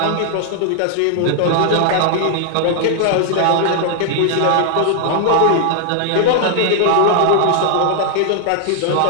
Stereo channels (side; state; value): both; different; correlation 0.00